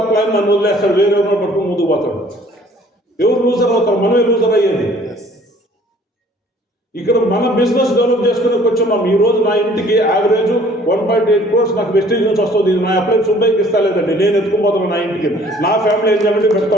అప్లైన్ నన్ను వదిలేస్తాడు, వేరే ఎవరో పట్టుకుని ముందుకు పోతాడు. ఎవరు లూజర్ అవుతారు? మనమే లూజర్ అయ్యేది. ఇక్కడ మన బిజినెస్ డెవలప్ చేసుకునే వచ్చున్నాం. ఈ రోజు నా ఇంటికి యావరేజ్ 1.8 crores నాకు వెస్టేజ్ నుంచి వస్తుంది. నా అప్లైన్ సుబ్బైకి ఇస్తా లేదండి, నేను ఎత్తుకుపోతాను నా ఇంటికి. నా ఫ్యామిలీ ఎంజాయ్మెంట్ పెడతా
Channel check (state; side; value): normal; both; correlation 0.55